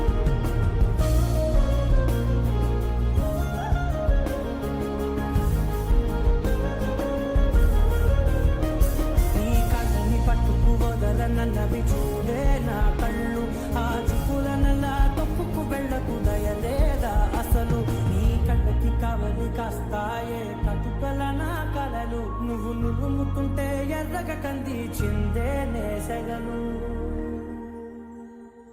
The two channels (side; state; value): both; identical; correlation 1.00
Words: నన్నవి చూడే నా కళ్ళు, ఆ చూపులనల్లా తప్పుకు వెళ్ళకు దయలేదా అసలు. నీ కళ్ళకి కవలి కాస్తాయే కటుకల నా కలలు, నువ్వు నులుముతుంటే ఎర్రగా కందిచిందే నేసెగలు.